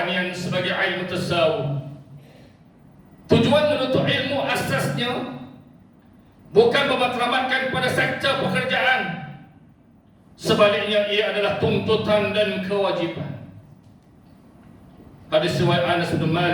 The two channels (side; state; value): both; identical; correlation 1.00